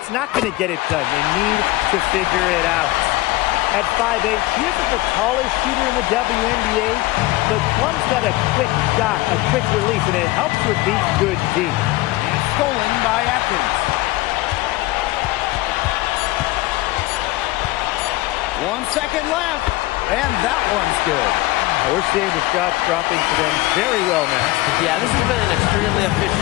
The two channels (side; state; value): right; quieter; 19.0 dB